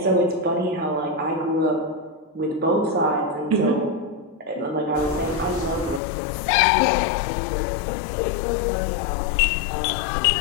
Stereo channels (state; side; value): drops out; right; at 6.0 s